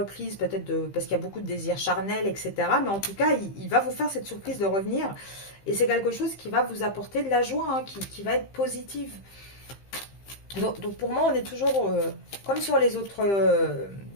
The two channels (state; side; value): late; right; 15 ms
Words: peut-être parce qu'il y a beaucoup de désirs charnels, etc. Mais en tout cas, il va vous faire cette surprise de revenir. Et c'est quelque chose qui va vous apporter de la joie, hein, qui va être positive. Donc pour moi, on est toujours, comme sur les autres